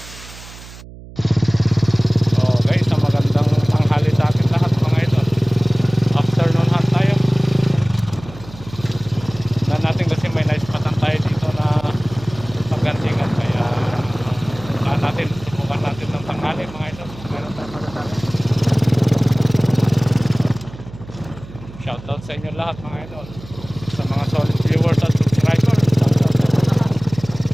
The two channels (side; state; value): right; noise; hum, 17 dB below the sound